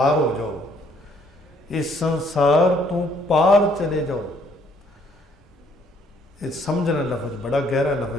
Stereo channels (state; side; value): normal; both; correlation 0.65